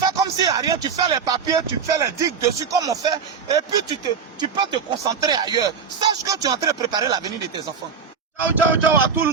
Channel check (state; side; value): quieter; left; 6.1 dB